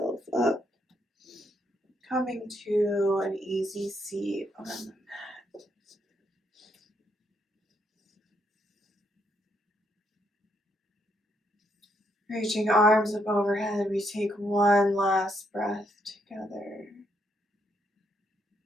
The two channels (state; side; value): normal; both; correlation 0.75